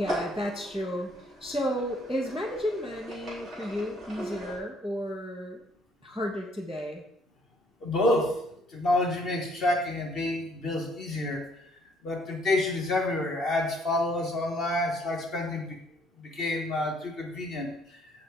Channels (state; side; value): normal; both; correlation 0.64